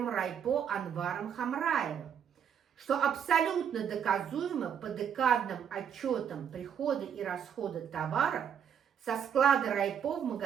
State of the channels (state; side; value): quieter; left; 8.2 dB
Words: райпо Анваром Хамраевым, что абсолютно доказуемо по декадным отчетам прихода и расхода товаров со склада райпо в